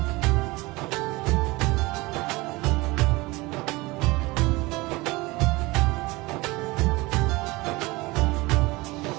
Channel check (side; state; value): left; quieter; 22.3 dB